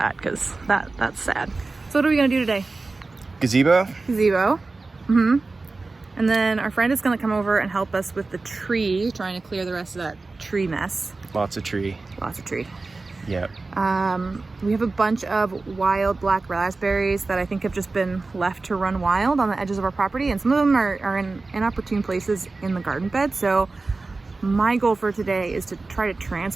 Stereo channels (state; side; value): quieter; left; 3.6 dB